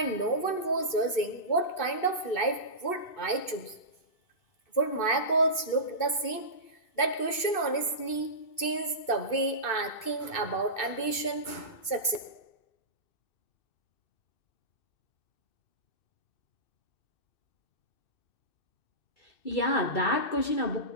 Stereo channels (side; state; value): right; late; 2.2 ms